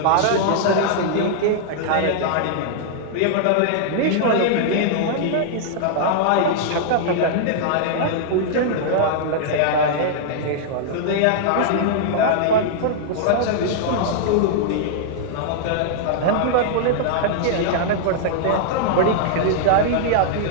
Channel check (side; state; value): both; different; correlation -0.01